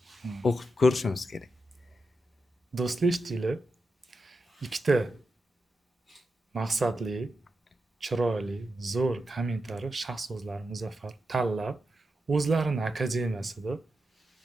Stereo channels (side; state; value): both; normal; correlation 0.88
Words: o'qib ko'rishimiz kerak. Do'stlar, eshitdinglar? Ikkita maqsadli, chiroyli, zo'r kommentariy shaxs so'zlari Muzaffar tanlab, o'zlarining akademiyasida